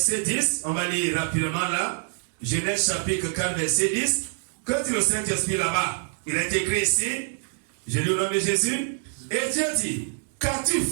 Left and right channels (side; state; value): left; silent; 61 dB below the other